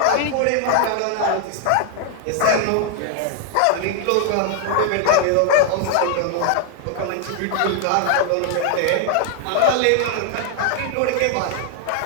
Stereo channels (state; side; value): different; both; correlation 0.00